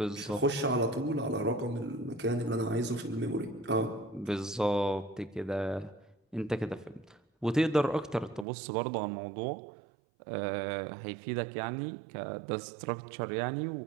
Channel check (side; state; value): left; drops out; at 8.5 s